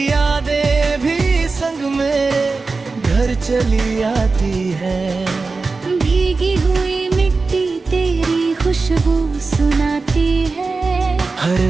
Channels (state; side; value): quieter; left; 4.0 dB